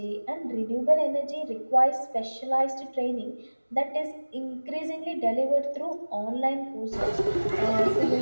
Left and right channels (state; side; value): inverted; both; correlation -1.00